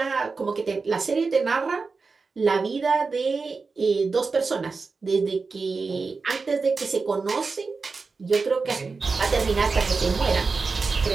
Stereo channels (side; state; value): left; quieter; 4.4 dB